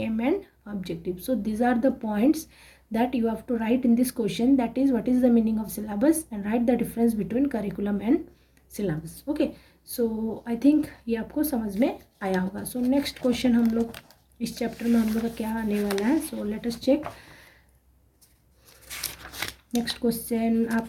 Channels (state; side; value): identical; both; correlation 1.00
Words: and objective. So these are the points that you have to write in this question, that is what is the meaning of syllabus and write the difference between curriculum and syllabus. Okay, so I think ये आपको समझ में आया होगा। so next question हम लोग इस चैप्टर में हम लोग का क्या आने वाला है। so let us check next question